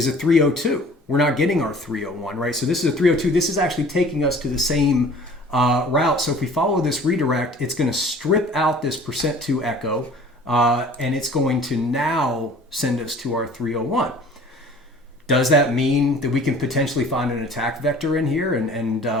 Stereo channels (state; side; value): normal; both; correlation 0.48